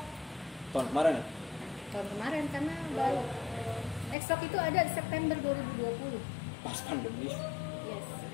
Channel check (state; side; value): drops out; right; at 4.2 s